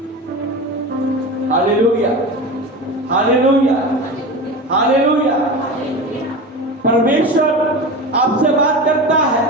Hallelujah, hallelujah, hallelujah. परमेश्वर आपसे बात करता है।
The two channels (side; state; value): both; normal; correlation 0.28